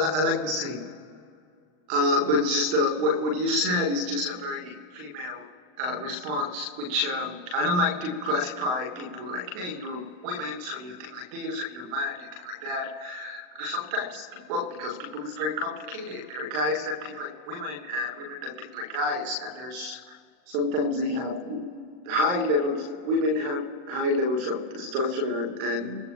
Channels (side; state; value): left; late; 39 ms